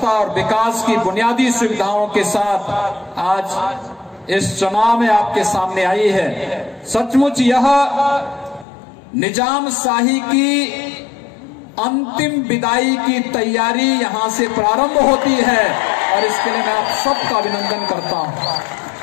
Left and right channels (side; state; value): right; drops out; at 8.7 s